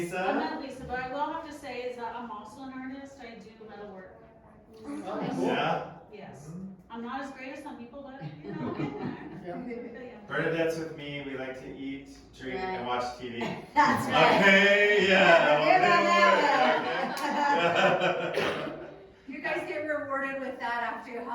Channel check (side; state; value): both; identical; correlation 1.00